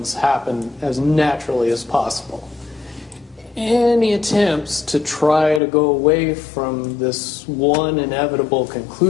happen as naturally as possible. Any attempts to try to go away from this one inevitable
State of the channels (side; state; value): right; drops out; at 5.6 s